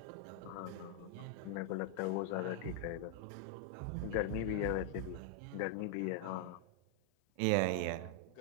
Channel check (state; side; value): different; both; correlation 0.00